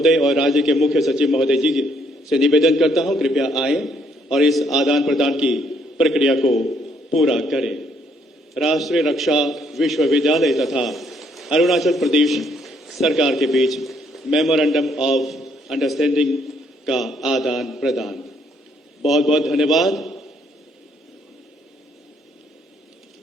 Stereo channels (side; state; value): both; normal; correlation 0.69